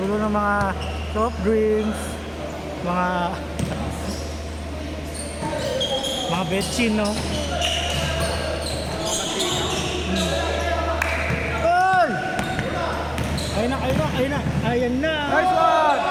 ng mga soft drinks, mga betchin, no? Ay! Ayun na, ayun na, ayun na, ayan na! Nice one!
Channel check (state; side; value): identical; both; correlation 1.00